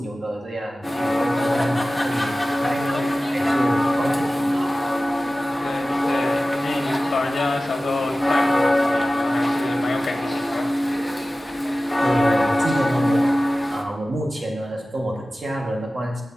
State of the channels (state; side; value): normal; both; correlation 0.96